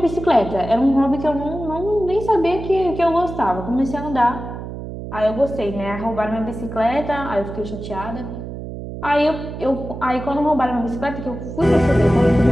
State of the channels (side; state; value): right; noise; hum, 9 dB below the sound